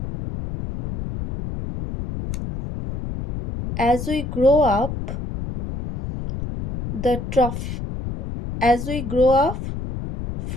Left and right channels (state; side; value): noise; left; rumble, 6 dB below the sound